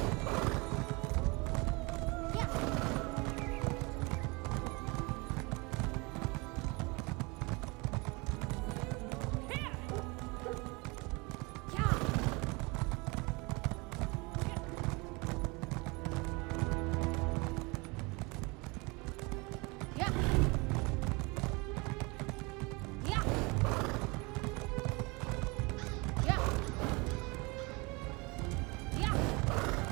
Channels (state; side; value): quieter; left; 27.0 dB